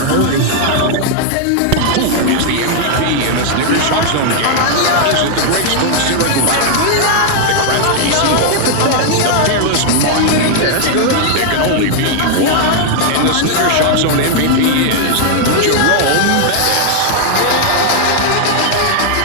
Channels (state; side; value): different; both; correlation 0.00